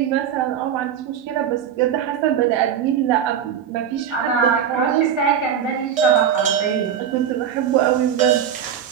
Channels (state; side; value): quieter; left; 8.7 dB